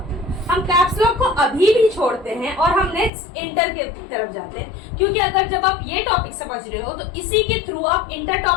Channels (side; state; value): right; drops out; at 3.1 s